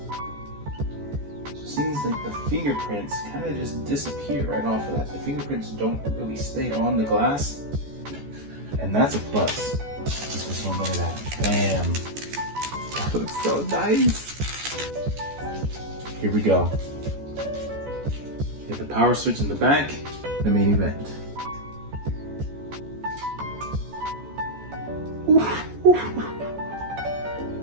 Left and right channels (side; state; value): left; late; 14 ms